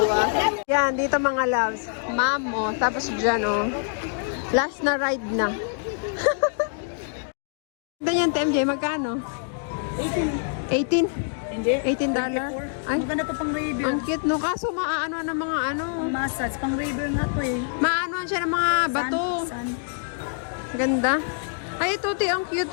Yan, dito mga loves. Mammoth. Tapos dyan, oh. Last na ride na. Ganyan, TMJ, magkano? 18? Hindi. $18? Ay, Maganda to pang review. ang cute, no? Kaso maaano ng mga ano. Massage. Pang review nga to eh. Maanoan siya ng mga bato. Sun. Ganda. Ay, ito, ang cute,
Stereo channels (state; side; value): silent; right; digital silence